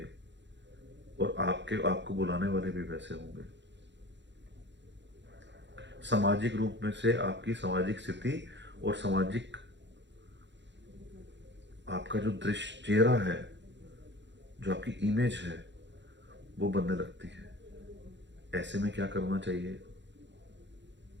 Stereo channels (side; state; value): left; late; 0.52 ms